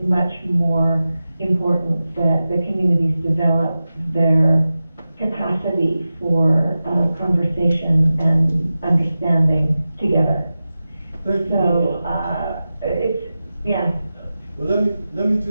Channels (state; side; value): inverted; both; correlation -0.94